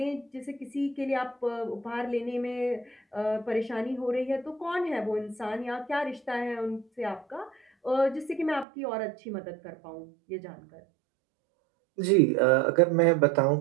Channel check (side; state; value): left; drops out; at 8.7 s